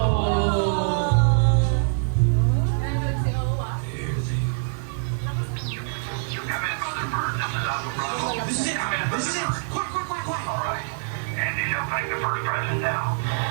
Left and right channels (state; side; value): silent; left; digital silence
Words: This is it. Quick. All right. Andy, you'll take the first present now.